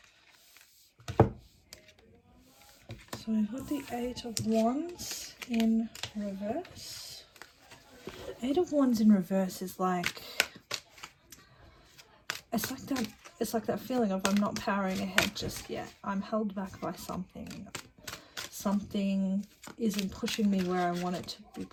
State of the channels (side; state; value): both; identical; correlation 1.00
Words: So we've got the Eight of Wands in reverse. Eight of Wands in reverse is like, it's like that feeling of I'm not powering ahead just yet. I'm held back by something. Something isn't pushing me where I want it to be